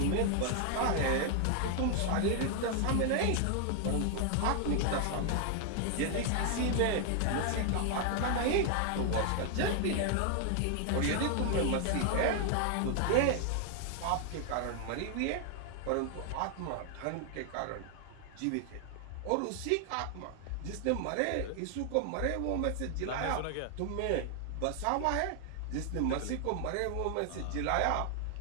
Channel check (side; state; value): both; different; correlation 0.00